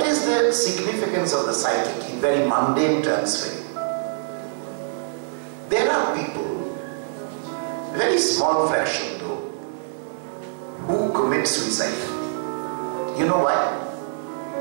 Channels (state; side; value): silent; left; digital silence